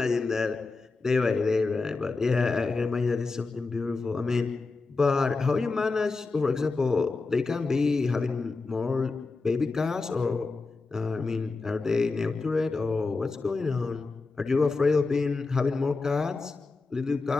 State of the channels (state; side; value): quieter; right; 3.9 dB